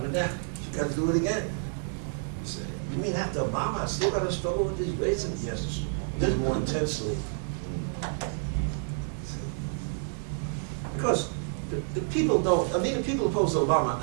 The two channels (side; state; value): left; silent; digital silence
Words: down. You got to do it again. You say, you mean after Obama, I still got to struggle with these races? Yes, just more intensely. Because the people don't, I mean, the people opposed to Obama